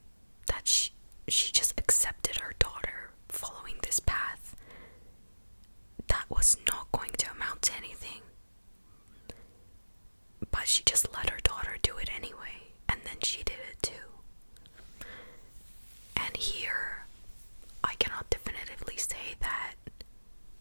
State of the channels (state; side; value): inverted; both; correlation -1.00